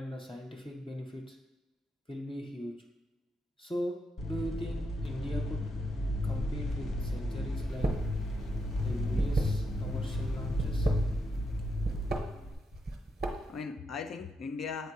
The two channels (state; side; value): normal; both; correlation 0.82